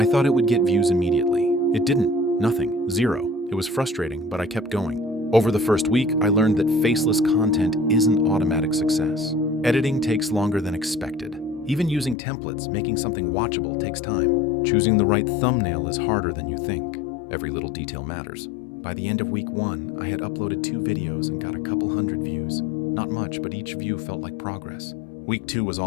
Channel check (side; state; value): right; drops out; at 12.2 s